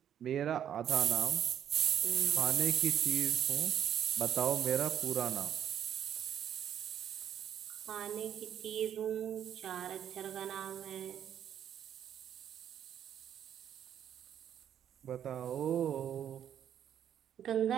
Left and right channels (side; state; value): left; quieter; 9.6 dB